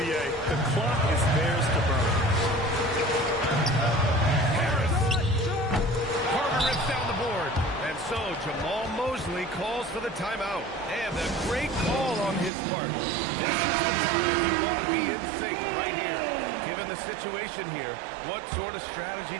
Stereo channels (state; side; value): drops out; left; at 12.5 s